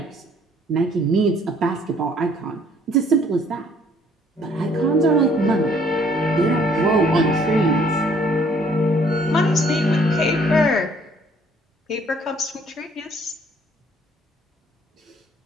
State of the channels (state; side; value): normal; both; correlation 0.61